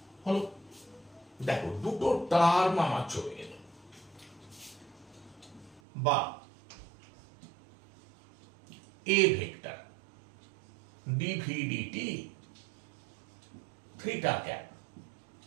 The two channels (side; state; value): left; drops out; at 5.8 s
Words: হলো। দেখো দুটো টার্ম আমার চলে গেল, বা a vector d v d t theta cap,